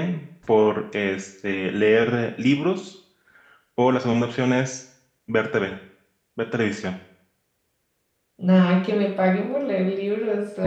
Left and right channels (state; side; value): identical; both; correlation 1.00